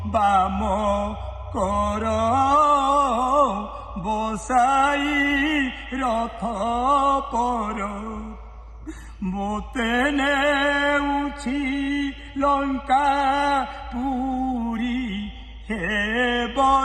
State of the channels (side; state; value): both; identical; correlation 1.00